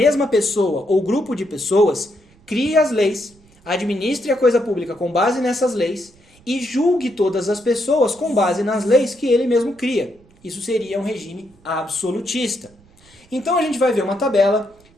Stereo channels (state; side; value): noise; right; rumble, 29 dB below the sound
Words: pessoa ou grupo de pessoas crie as leis, administre a coisa pública com base nessas leis e julgue todas as pessoas com base nas leis que ele mesmo cria. Isso seria um regime absolutista. Então a gente vai ver uma tabela